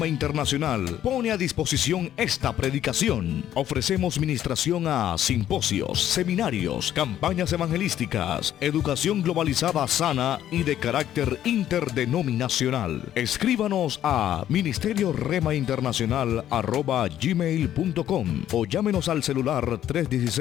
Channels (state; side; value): quieter; right; 11.5 dB